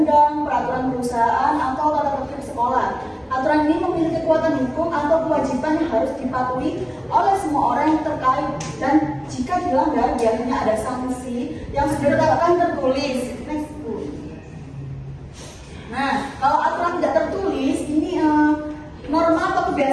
peraturan perusahaan, atau tata tertib sekolah. Aturan ini memiliki kekuatan hukum atau kewajiban yang harus dipatuhi oleh semua orang yang terkait, dan jika dilanggar biasanya ada sanksi yang sudah ditetapkan tertulis. Next Bu. Nah, kalau aturan tidak tertulis ini norma atau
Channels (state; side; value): identical; both; correlation 1.00